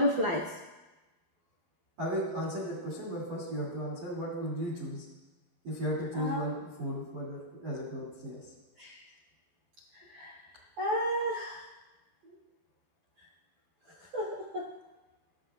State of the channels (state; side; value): late; left; 12 ms